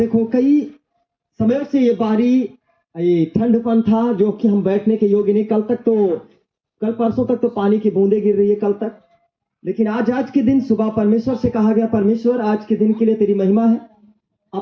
कई समयों से ये बारी, ये ठंडपन था जो कि हम बैठने के योग्य नहीं। कल परसों तक तो पानी की बूंदे गिर रही है, कल तक। लेकिन आज के दिन सुबह परमेश्वर से कहा गया, परमेश्वर आज के दिन के लिए तेरी महिमा है,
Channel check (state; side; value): identical; both; correlation 1.00